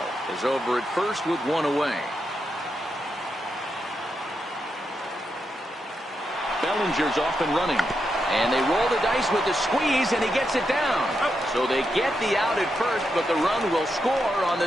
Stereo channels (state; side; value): normal; both; correlation 0.84